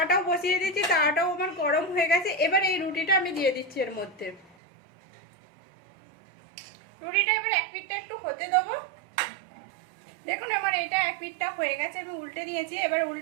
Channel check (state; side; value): drops out; left; at 4.5 s